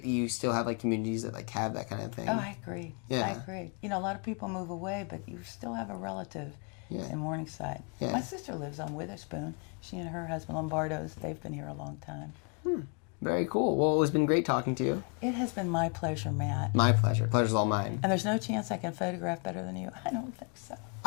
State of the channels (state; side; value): quieter; right; 37.7 dB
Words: that you still have like communities that like have that kind of thing. Oh, I agree. Yeah. I agree. You know, a lot of people move away, but you still have a relative in Morningside. Yeah. My sister lives on Witherspoon. She and her husband, Lombardo's, they've been here a long time. Very cool. Well, it's been great talking to you. It has been my pleasure, Matt. My pleasure. Pleasure's all mine. And there's no chance I can photograph better than you? I don't think so.